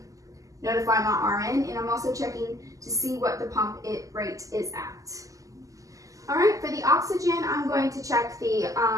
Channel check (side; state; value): left; late; 0.16 ms